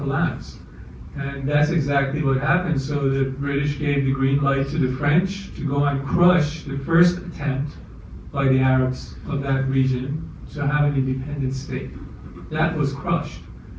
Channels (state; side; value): identical; both; correlation 1.00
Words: And that's exactly what happened. So the British gave the green light to the French to go and crush the first attempt by the Arabs of that region to have an independent state. That was crushed.